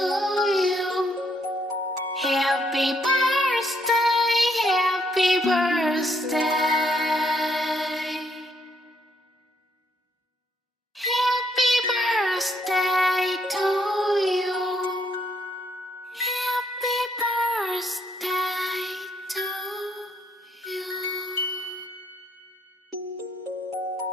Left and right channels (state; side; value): normal; both; correlation 0.72